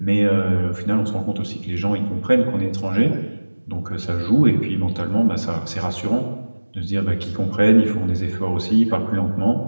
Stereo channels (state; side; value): inverted; both; correlation -1.00